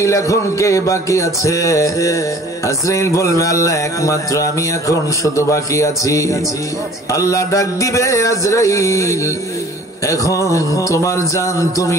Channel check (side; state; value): both; normal; correlation 0.49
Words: এখন কে বাকি আছে? আজরাইল বলবে, আল্লাহ একমাত্র আমি এখন শুধু বাকি আছি। আল্লাহ ডাক দিবে, আজরাইল এখন তোমার জান